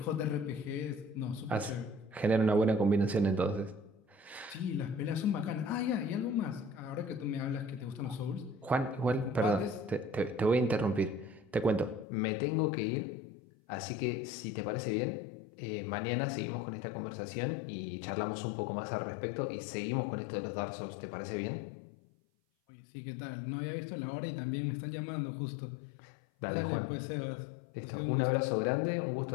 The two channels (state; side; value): drops out; right; at 12.1 s